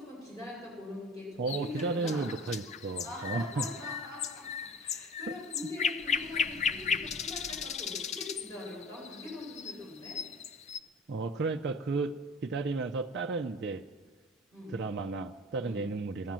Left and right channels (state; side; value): normal; both; correlation 0.42